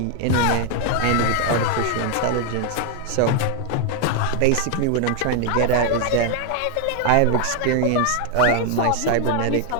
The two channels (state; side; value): different; both; correlation 0.00